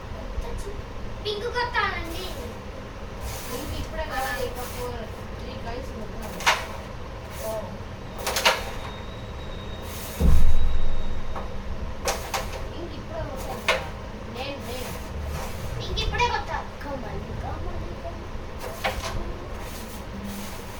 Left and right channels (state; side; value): identical; both; correlation 1.00